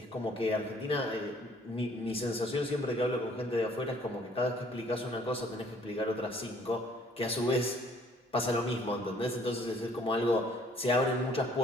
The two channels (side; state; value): both; normal; correlation 0.59